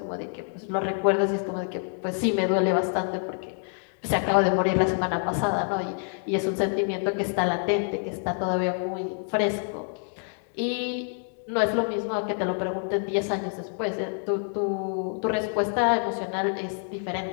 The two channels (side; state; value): right; silent; 55 dB below the other